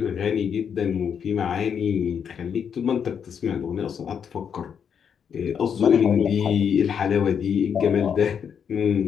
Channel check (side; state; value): right; quieter; 7.5 dB